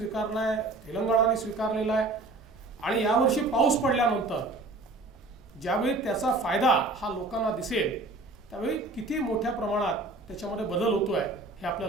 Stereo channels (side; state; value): left; quieter; 3.2 dB